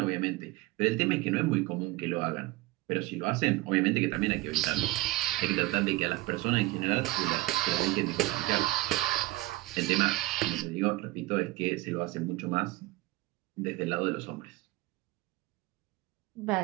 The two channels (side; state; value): left; quieter; 19.3 dB